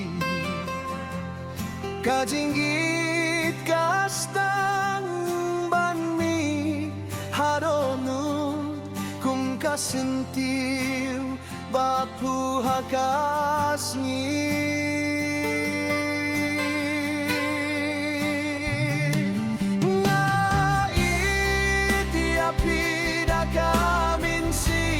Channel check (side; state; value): both; identical; correlation 1.00